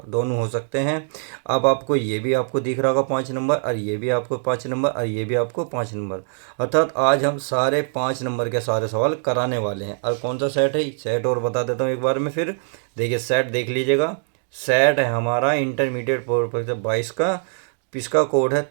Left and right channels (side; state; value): left; silent; digital silence